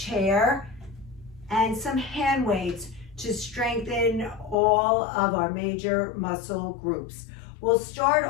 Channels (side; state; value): right; drops out; at 4.5 s